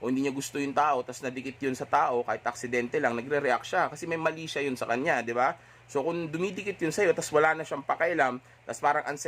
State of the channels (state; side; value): identical; both; correlation 1.00